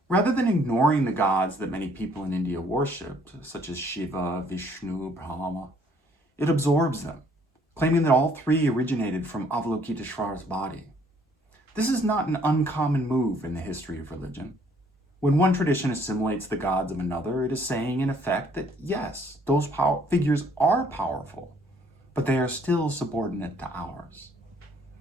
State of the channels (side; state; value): both; normal; correlation 0.63